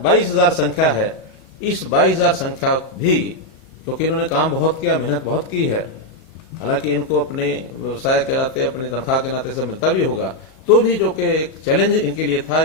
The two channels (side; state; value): right; late; 36 ms